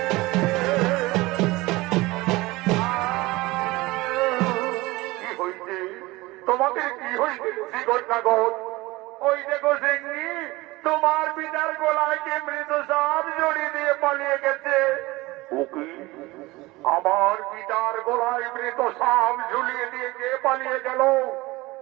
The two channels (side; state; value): left; quieter; 20.9 dB